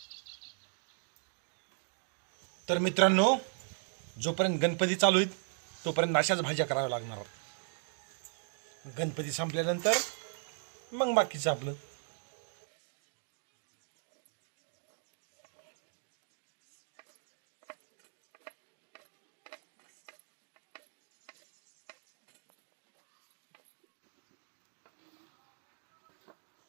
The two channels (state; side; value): silent; left; 53 dB below the other